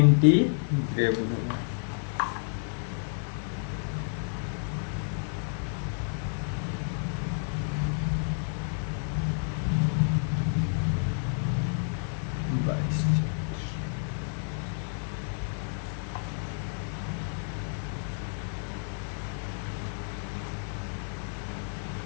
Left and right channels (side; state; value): right; silent; 57 dB below the other